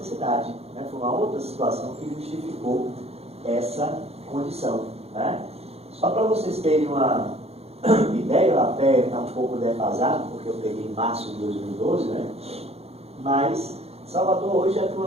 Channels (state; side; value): late; left; 0.30 ms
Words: né? Foi uma outra situação que justificou essa condição, né? Só para vocês terem uma ideia, até está um pouco defasado, porque eu peguei em março de 2012, né? Mas Salvador hoje já tem